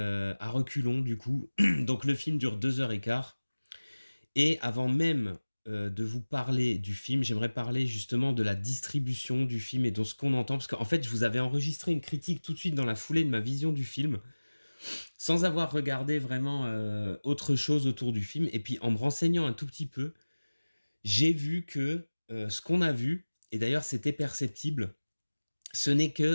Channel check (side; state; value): both; inverted; correlation -1.00